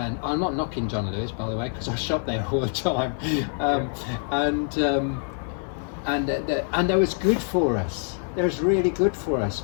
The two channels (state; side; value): silent; right; 57 dB below the other